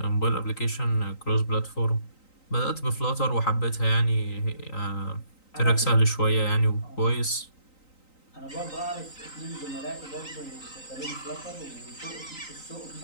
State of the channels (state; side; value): late; right; 3.9 ms